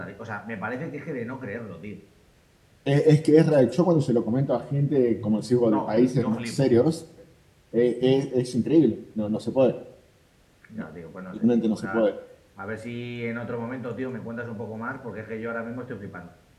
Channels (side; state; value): both; identical; correlation 1.00